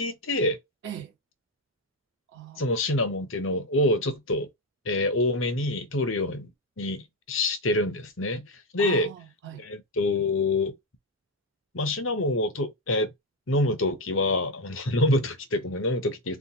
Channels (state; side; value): normal; both; correlation 0.07